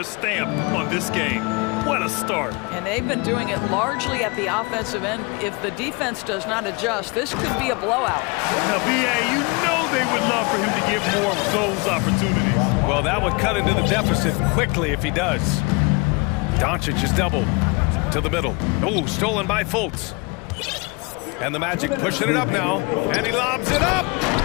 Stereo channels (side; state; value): right; quieter; 28.7 dB